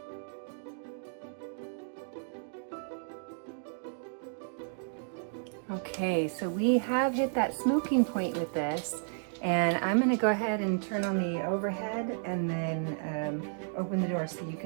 Okay, so we have hit that smoking point with this, and I'm going to go ahead and turn on the overhead and then open the door so you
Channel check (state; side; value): silent; left; digital silence